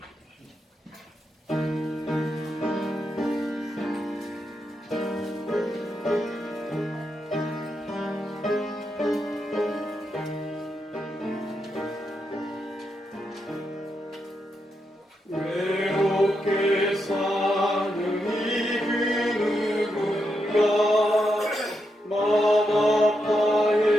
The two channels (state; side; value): normal; both; correlation 0.84